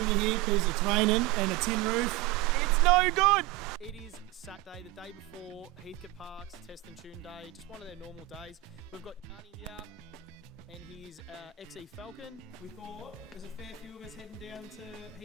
in here because it's raining and a tin roof. It's no good. It is Saturday, the day before Heathcote Park's Test and Tune day, just one of their normal days. We've got Yani here and his XE Falcon. We thought there's a fair few of us heading down to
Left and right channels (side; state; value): left; quieter; 16.4 dB